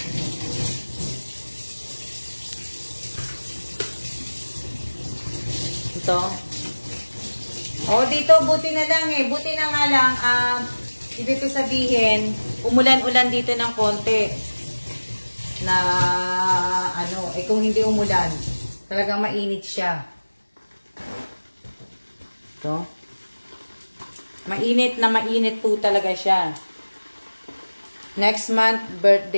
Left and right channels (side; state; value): both; inverted; correlation -1.00